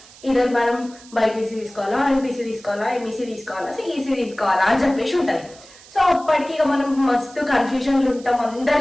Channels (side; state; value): right; noise; hiss, 22 dB below the sound